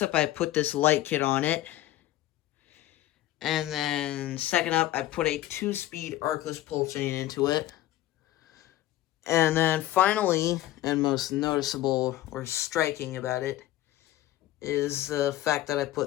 up, I put this light kit on it. And then, second up, I put a 2-speed arcless pull chain into it. And then, finally, and most noticeable or striking about it, is the fact that I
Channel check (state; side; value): quieter; right; 14.8 dB